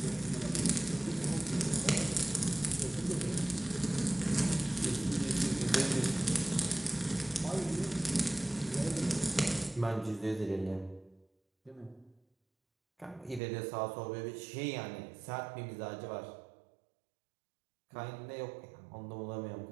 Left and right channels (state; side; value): drops out; left; at 13.4 s